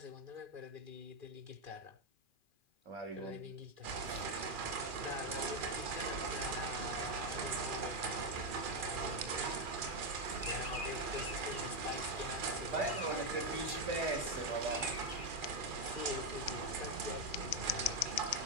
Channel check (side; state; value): left; late; 2.4 ms